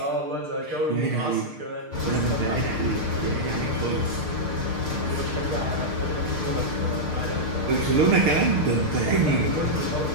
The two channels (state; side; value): late; left; 6.6 ms